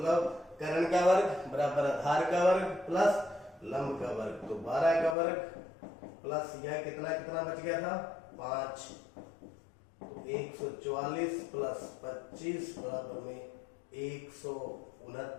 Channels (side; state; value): right; drops out; at 5.2 s